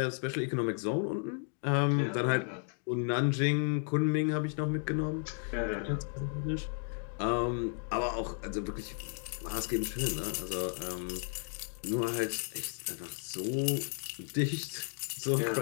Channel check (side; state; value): right; silent; 55 dB below the other